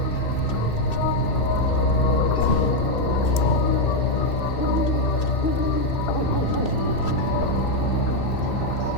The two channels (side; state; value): right; late; 2.6 ms